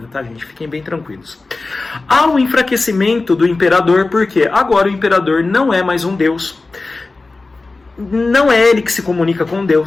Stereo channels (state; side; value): quieter; right; 3.5 dB